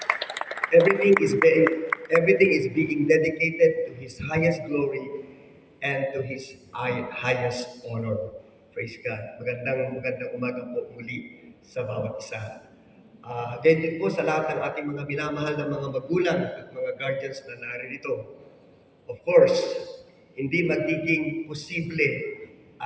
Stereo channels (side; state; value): both; identical; correlation 1.00